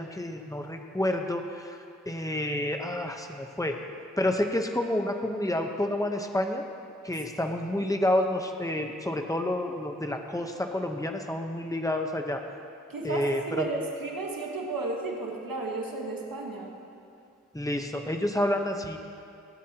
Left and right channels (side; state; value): both; normal; correlation 0.67